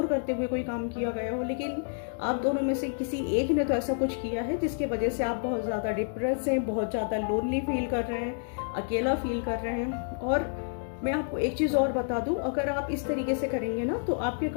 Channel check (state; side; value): silent; right; digital silence